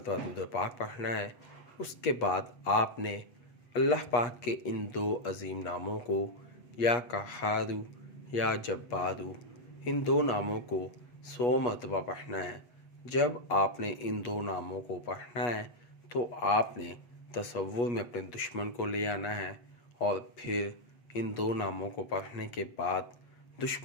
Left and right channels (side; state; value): right; late; 8.3 ms